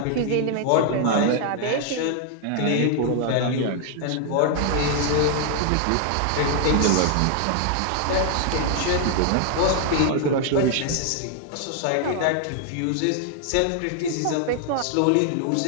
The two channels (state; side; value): different; both; correlation 0.00